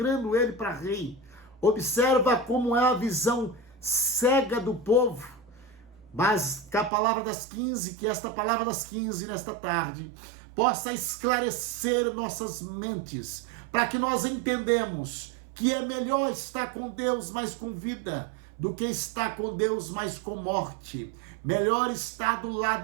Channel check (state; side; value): drops out; left; at 6.9 s